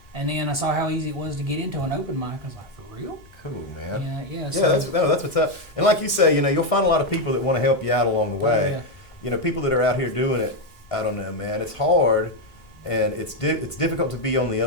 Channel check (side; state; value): both; normal; correlation 0.05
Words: And then I saw how easy it was to get into an open mic. I was like, for real? Cool, man. Yeah. Yeah, So, that's what's up. And like you say, you'll find a lot of people that want to help you out along the way. yeah. People that are out here doing it. I don't know, man. It's hard, and it's difficult to be on the